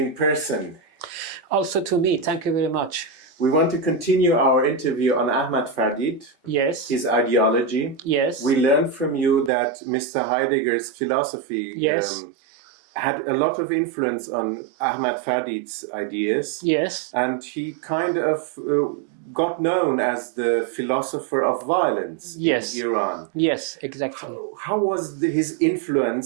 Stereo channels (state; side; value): drops out; left; at 9.5 s